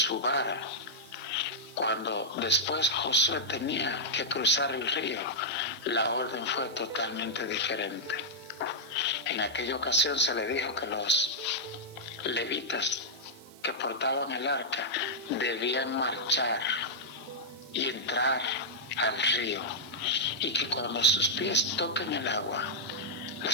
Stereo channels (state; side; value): noise; right; hiss, 23 dB below the sound